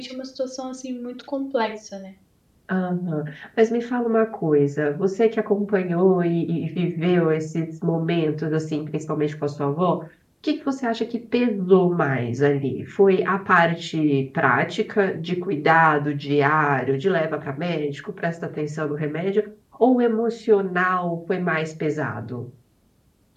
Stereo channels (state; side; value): identical; both; correlation 1.00